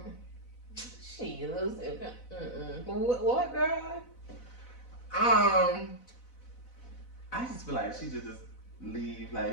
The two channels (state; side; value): late; right; 4.0 ms